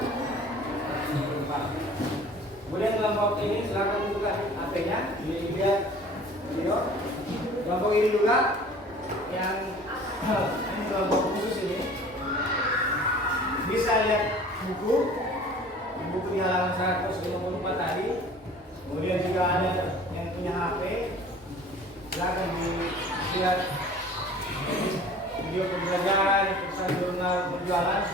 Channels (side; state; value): both; normal; correlation 0.46